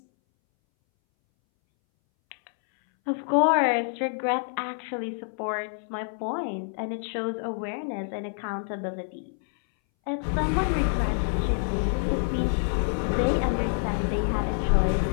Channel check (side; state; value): right; silent; 60 dB below the other